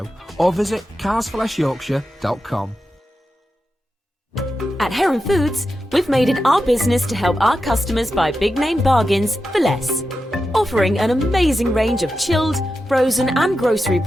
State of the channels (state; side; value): normal; both; correlation 0.90